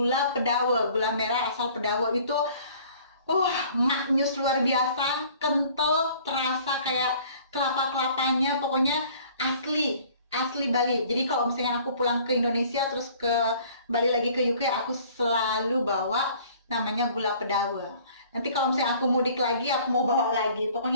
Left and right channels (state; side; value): inverted; both; correlation -0.53